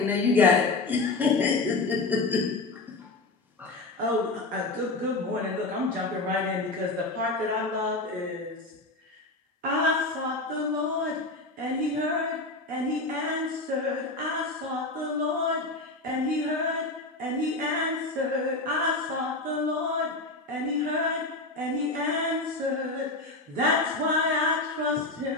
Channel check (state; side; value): quieter; right; 3.1 dB